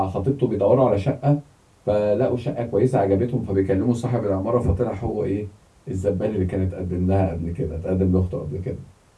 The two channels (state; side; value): identical; both; correlation 1.00